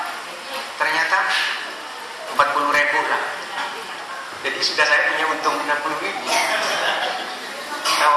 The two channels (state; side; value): identical; both; correlation 1.00